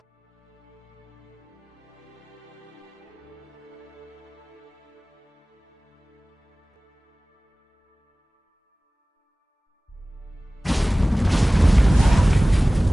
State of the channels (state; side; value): normal; both; correlation 0.98